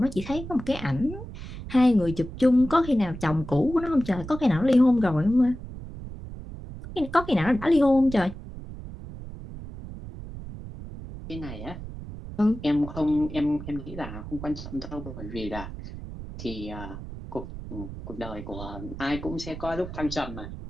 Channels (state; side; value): noise; right; rumble, 11 dB below the sound